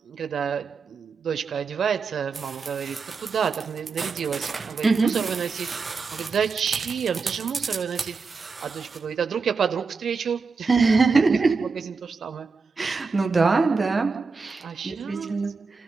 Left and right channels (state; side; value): quieter; left; 4.7 dB